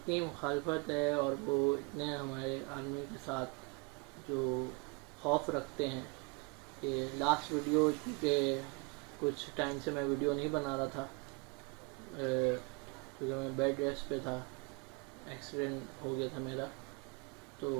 مخالفت ہے اور وہ اتنے ہمارے آرمی کے ساتھ جو خوف رکھتے ہیں کہ لاسٹ ویڈیو کے کچھ ٹائم سے میں ویڈیو نہیں بنا رہا تھا کیونکہ میں بیڈ ریسٹ پہ تھا، ایکسیڈنٹ ہو گیا تھا میرا، تو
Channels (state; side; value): quieter; left; 30.7 dB